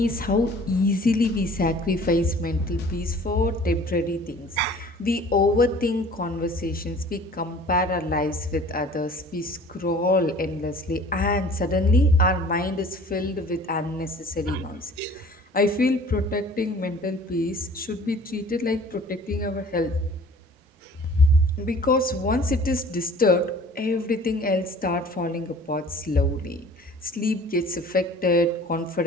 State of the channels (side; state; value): both; normal; correlation 0.49